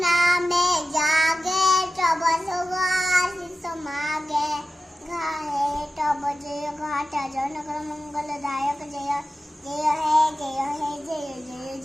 जागे तब सुख आशीष मागे गाहे तब जय घाटा जनक मंगलदायक जय जय है जय है जय जय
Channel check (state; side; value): normal; both; correlation 0.94